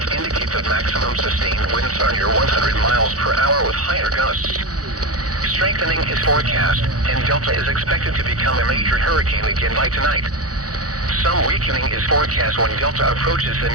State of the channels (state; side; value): late; left; 0.67 ms